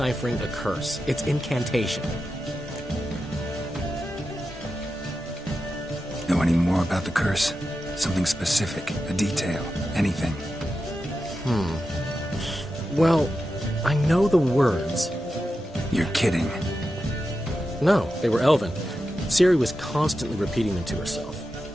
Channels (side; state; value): both; normal; correlation 0.90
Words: a curse. It's incantation. Know any more about the curse? Something specific, a detail, anything? Well, I know the words. You're kidding. No, they were Elven. Ciri was constantly repeating them to herself.